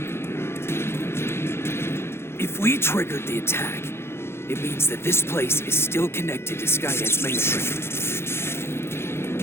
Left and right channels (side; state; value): right; late; 0.12 ms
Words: If we triggered the attack, it means that this place is still connected to Skynet's mainframe.